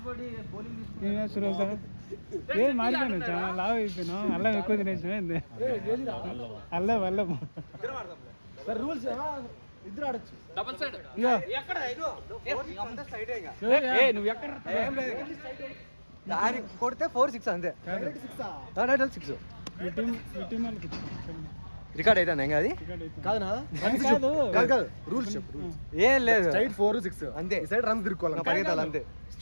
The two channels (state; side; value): inverted; both; correlation -1.00